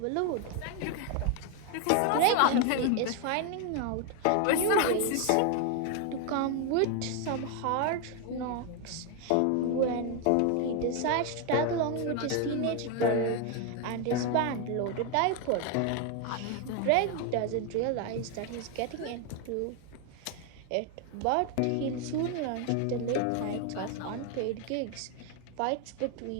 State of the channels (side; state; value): both; different; correlation 0.01